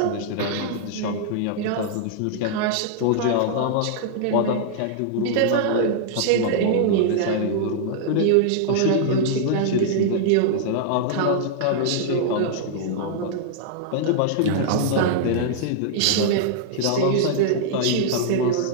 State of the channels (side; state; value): both; different; correlation -0.01